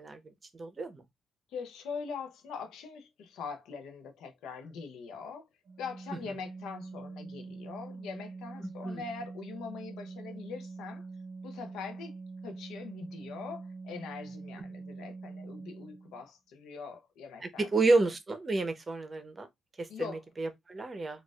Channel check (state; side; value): normal; both; correlation 0.84